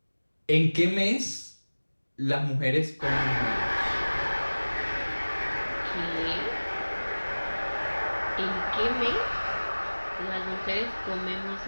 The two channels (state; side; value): inverted; both; correlation -1.00